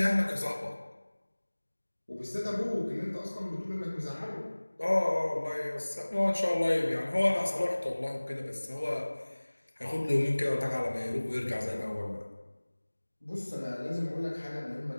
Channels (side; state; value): both; inverted; correlation -1.00